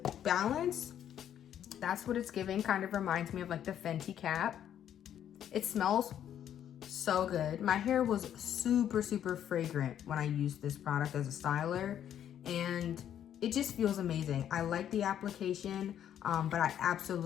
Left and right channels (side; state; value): right; quieter; 10.1 dB